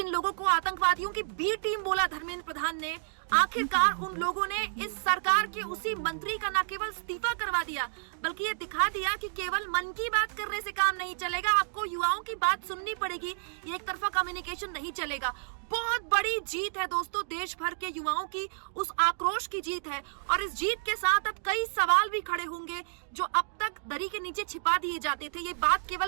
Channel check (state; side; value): silent; left; digital silence